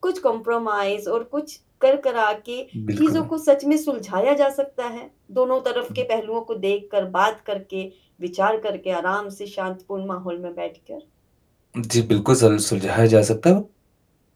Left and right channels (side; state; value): both; identical; correlation 1.00